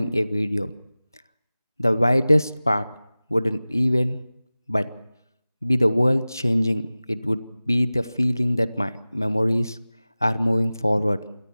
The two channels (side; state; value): both; inverted; correlation -0.98